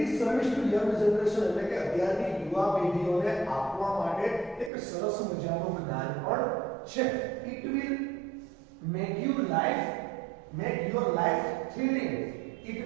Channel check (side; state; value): left; drops out; at 4.7 s